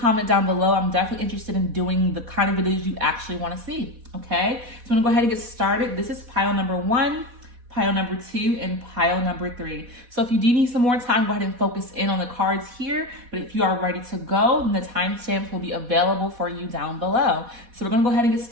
down below. I'm definitely interested in doing the kind of videos you actually want to see, okay? So I'm going to go ahead and get started. This is pile number 1, pile number 2, and pile number 3. So if you do need some more time, go ahead and focus in on the cards here. But if you are ready to go, then the timestamps will be available for you down below. So we're going to go ahead and get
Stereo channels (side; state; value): left; late; 4.1 ms